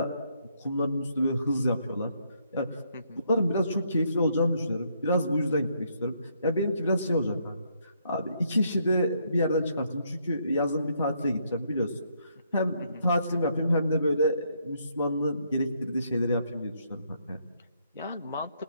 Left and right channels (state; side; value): inverted; both; correlation -0.73